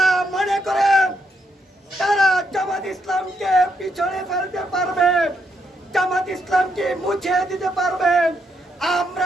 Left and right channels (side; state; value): both; normal; correlation 0.77